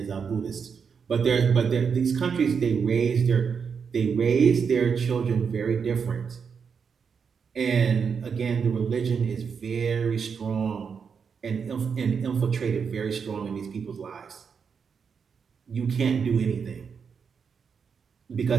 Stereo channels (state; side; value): quieter; left; 6.3 dB